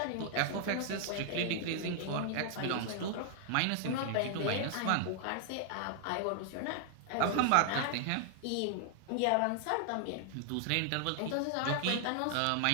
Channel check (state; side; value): different; both; correlation 0.00